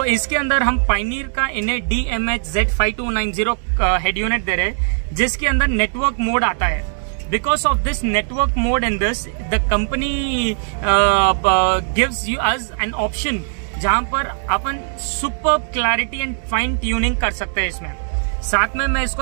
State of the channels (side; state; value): left; silent; digital silence